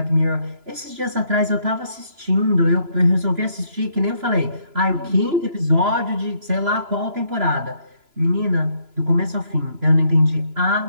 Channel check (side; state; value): left; late; 3.0 ms